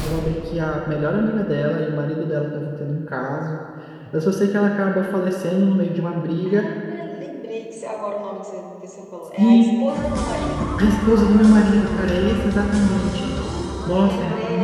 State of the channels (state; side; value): identical; both; correlation 1.00